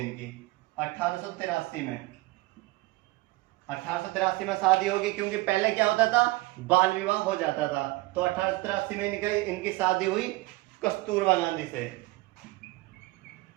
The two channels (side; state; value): left; quieter; 20.9 dB